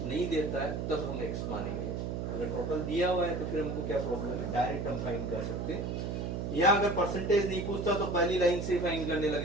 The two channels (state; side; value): noise; right; hum, 3 dB below the sound